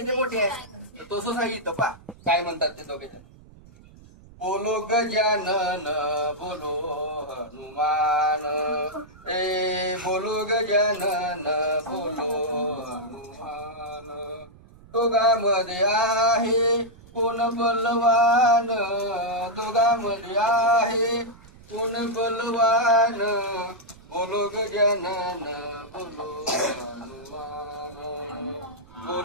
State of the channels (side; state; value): right; noise; rumble, 23 dB below the sound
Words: मोठे आहे. तर तसंच आहे इथं पा काय म्हणतात ते दोघे. बोलो गजानन बोलो हनुमान, बोलो गजानन बोलो हनुमान. दोघांमध्ये आहे कोण बलवान, दोघांमध्ये आहे कोण बलवान. बोलो गजानन बोलो हनुमान,